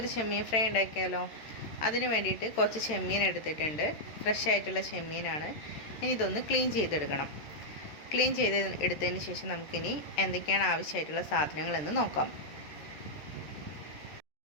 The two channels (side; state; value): right; late; 13 ms